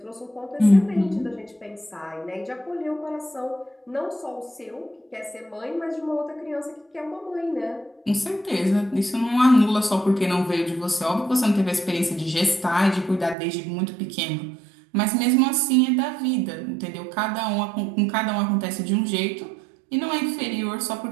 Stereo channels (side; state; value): left; drops out; at 13.4 s